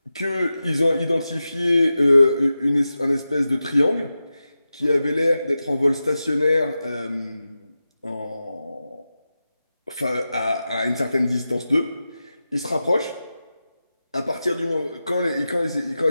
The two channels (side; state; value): both; inverted; correlation -0.93